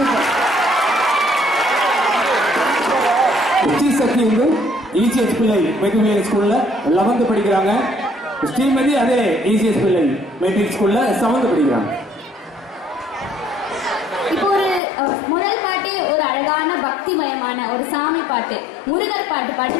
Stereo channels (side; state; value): right; drops out; at 14.8 s